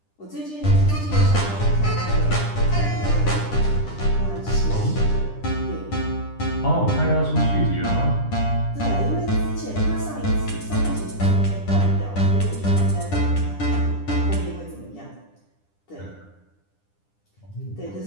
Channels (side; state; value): right; late; 10 ms